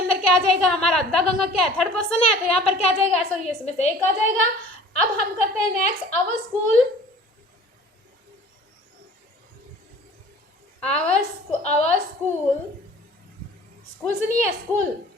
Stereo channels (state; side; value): normal; both; correlation 0.47